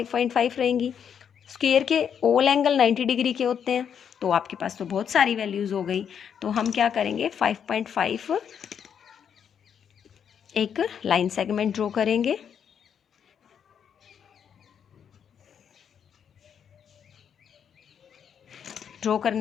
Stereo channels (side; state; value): right; quieter; 8.0 dB